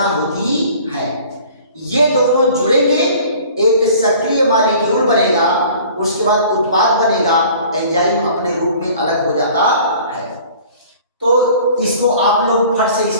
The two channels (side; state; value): both; inverted; correlation -0.48